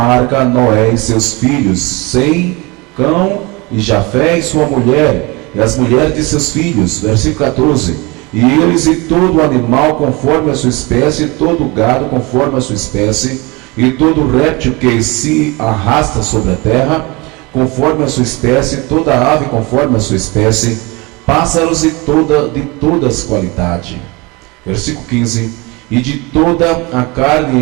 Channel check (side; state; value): left; quieter; 25.7 dB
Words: Noé e seus filhos, Sem, Cão e Jafé e sua mulher, e as mulheres de seus filhos. Versículo 14: e eles e todo animal conforme a sua espécie, todo gado conforme a sua espécie, e todo réptil que se arrasta sobre a terra conforme a sua espécie, toda ave conforme a sua espécie, pássaros de todas qualidade. Versículo 15: e de toda a